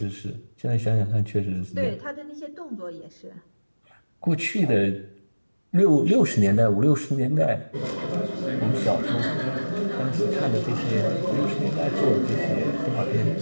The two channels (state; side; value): inverted; both; correlation -1.00